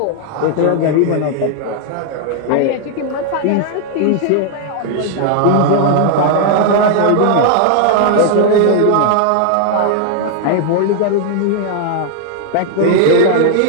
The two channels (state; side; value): different; both; correlation 0.00